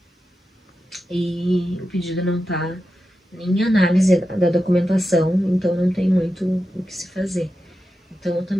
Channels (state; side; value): normal; both; correlation 0.90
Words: E o pedido não tá nem em análise da documentação, então não tem muito o que se fazer. Então eu